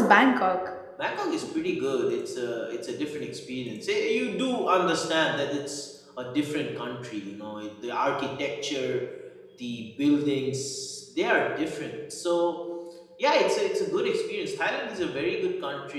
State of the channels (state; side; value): identical; both; correlation 1.00